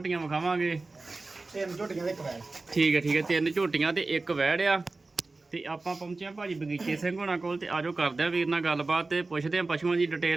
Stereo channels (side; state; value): left; quieter; 3.5 dB